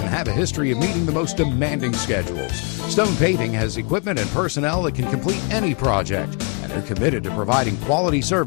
have a history of meeting the most demanding schedules. Stone Paving has equipment and personnel that can complete any project, and they're committed to providing quality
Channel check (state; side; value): quieter; right; 36.2 dB